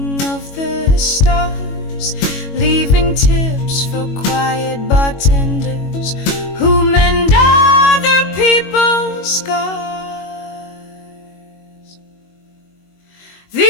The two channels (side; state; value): right; late; 22 ms